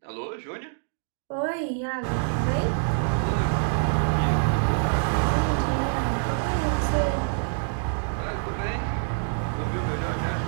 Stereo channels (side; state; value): left; silent; digital silence